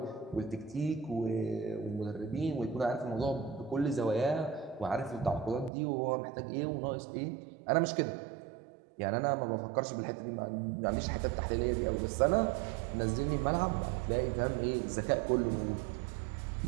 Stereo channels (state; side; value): drops out; left; at 5.7 s